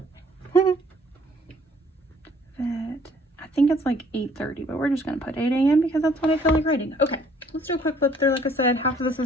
Vet. I think it's like 8:30, but we're just going to put 8 a.m. because that's what I feel like writing. Okay, let's do a quick flip through. Like I said, half of this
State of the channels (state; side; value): normal; both; correlation 0.59